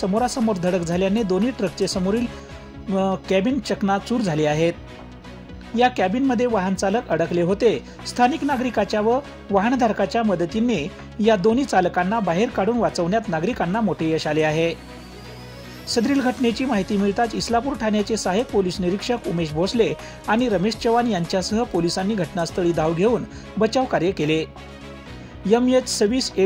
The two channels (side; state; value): both; identical; correlation 1.00